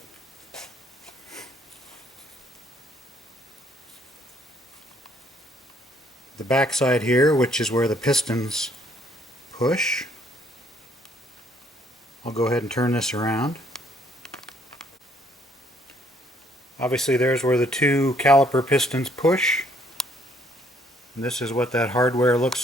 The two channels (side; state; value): both; normal; correlation 0.66